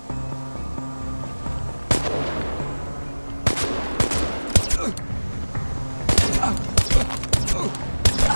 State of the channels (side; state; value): both; inverted; correlation -1.00